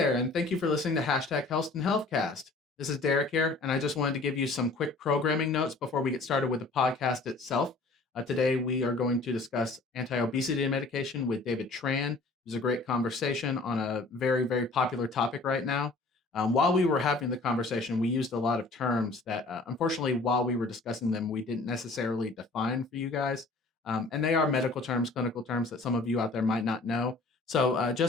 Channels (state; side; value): quieter; right; 3.4 dB